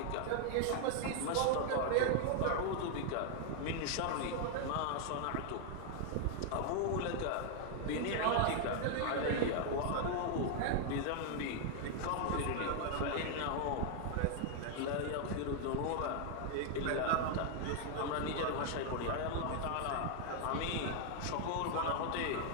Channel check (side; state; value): both; different; correlation 0.00